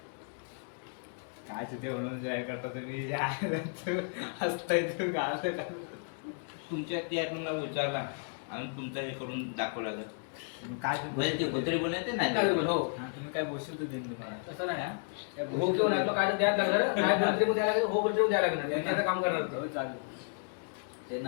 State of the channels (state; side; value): silent; right; 56 dB below the other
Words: काय तिथे म्हणून काय करता तुम्ही. हसताय तुमच्या त्या आयटमला विचारला आणि तुमचा हे करून दाखवला लागत. काय म्हणजे ते कोतरी बनवते नाही. हो तुम्ही काय बोलशील तू देईन तुम्हाला. कसं नाही. हो किंवा नाही. काय तर द्यायला लागणार. काय बोलते द्यायला लागणार. हो बोलते द्यायला लागणार. काम करणार. चालेल. ते